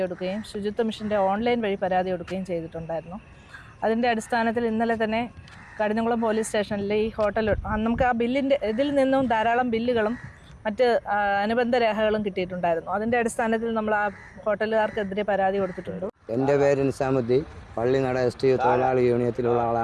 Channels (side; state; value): both; identical; correlation 1.00